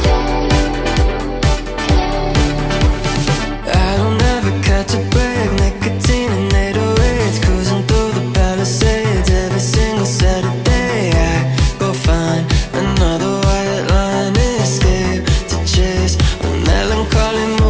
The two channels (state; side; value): identical; both; correlation 1.00